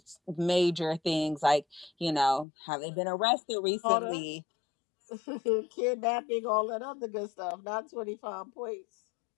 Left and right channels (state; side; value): drops out; right; at 2.5 s